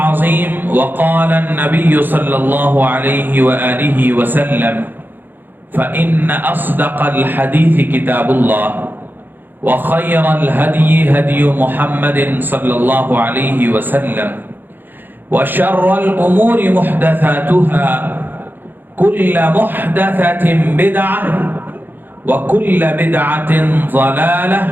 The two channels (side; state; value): left; late; 0.091 ms